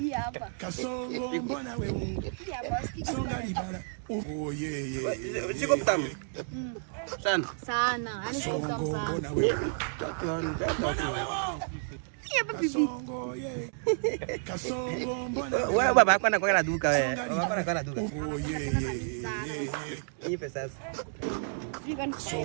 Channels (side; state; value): left; silent; 57 dB below the other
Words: hapa. Kasongo mbona wewe? Hii hapa sikiki. Songa liba. Siko mtamu. Sana. Sana. Yaani siko mtamu sana. Mbona wewe? Mbona wewe? Hapa pipi. Kasongo mbona wewe? Wewe baba yako anakuwa na duka wewe. Baba yako anakuwa na duka. Nipe sasa.